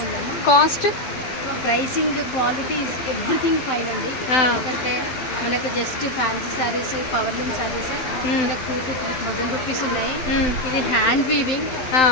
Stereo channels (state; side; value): late; right; 12 ms